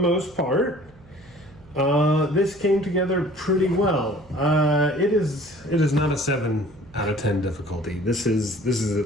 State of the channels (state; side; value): noise; right; hum, 25 dB below the sound